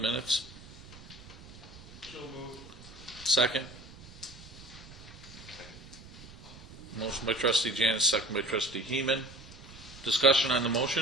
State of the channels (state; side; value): noise; right; rumble, 18 dB below the sound